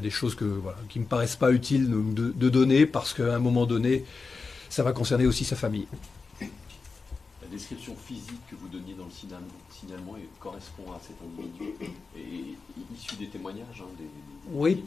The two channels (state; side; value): quieter; right; 4.4 dB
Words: des choses qui me paraissent pas utiles de donner parce qu'à un moment donné, ça va concerner aussi sa famille. La description physique que vous donniez dans le signalement correspond à cet individu et issu des témoignages. Oui,